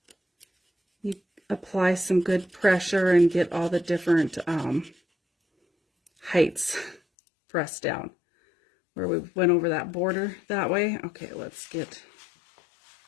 you apply some good pressure and get all the different heights pressed down. Where we went over that border that way. Okay, let's get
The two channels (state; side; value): drops out; right; at 7.0 s